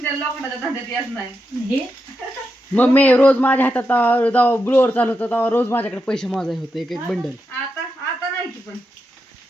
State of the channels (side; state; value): both; normal; correlation 0.86